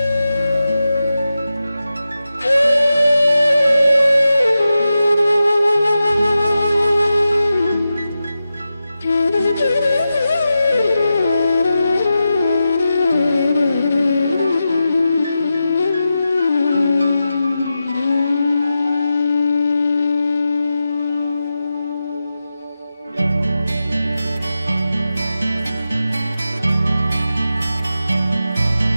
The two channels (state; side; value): inverted; both; correlation -0.91